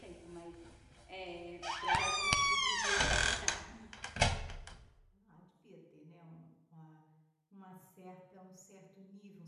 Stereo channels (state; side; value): identical; both; correlation 1.00